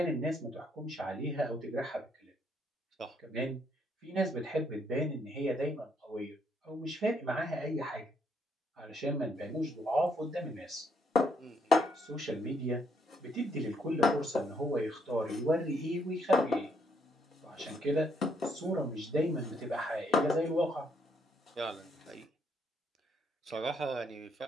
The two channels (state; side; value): normal; both; correlation 0.72